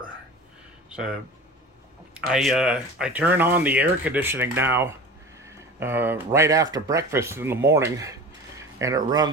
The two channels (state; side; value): normal; both; correlation 0.36